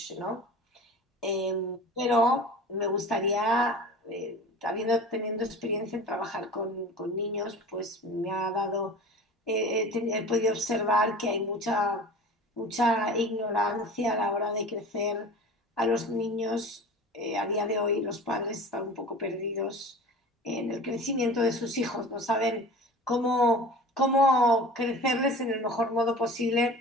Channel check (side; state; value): both; normal; correlation 0.38